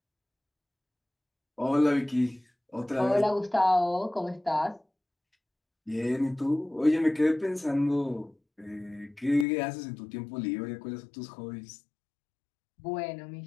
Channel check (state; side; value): drops out; right; at 9.5 s